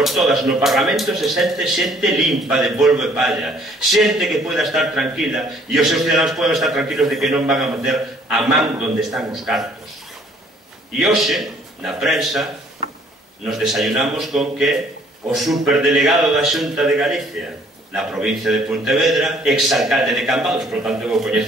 todas no Parlamento se sente xente limpa de polvo e palla, xente que poida estar tranquila e os seus cidadanos poden estar tranquilos de que non van a meter a man onde están os cartos. E hoxe, na prensa, nos desayunamos con que o superdelegado da Xunta de Galicia na provincia de Pontevedra, exalcalde de Cambados, por tanto eu o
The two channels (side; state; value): both; normal; correlation 0.60